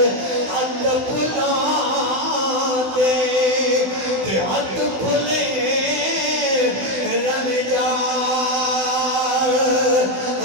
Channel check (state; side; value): late; left; 16 ms